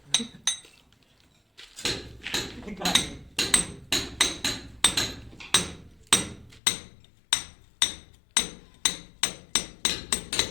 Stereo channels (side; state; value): right; drops out; at 6.6 s